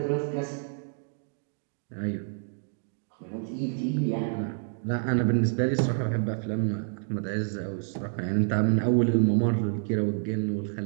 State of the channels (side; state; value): left; silent; digital silence